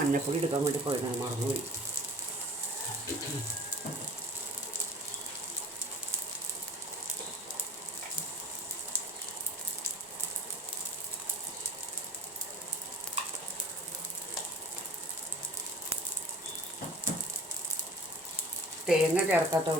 എടുക്കാൻ വേണ്ടി പോയതാണ്, മറന്നുപോയി. തേങ്ങ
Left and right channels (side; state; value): both; normal; correlation 0.45